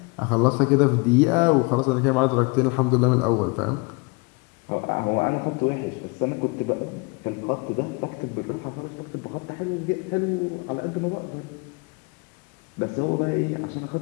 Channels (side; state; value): right; quieter; 30.2 dB